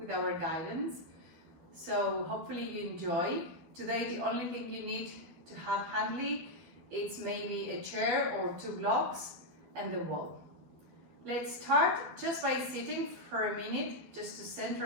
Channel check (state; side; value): late; left; 12 ms